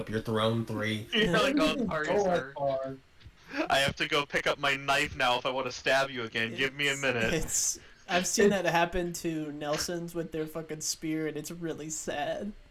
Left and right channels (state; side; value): identical; both; correlation 1.00